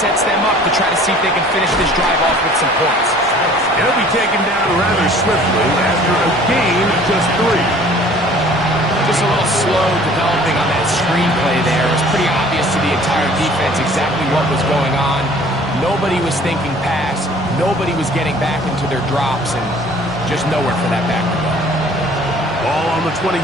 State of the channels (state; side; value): normal; both; correlation 0.51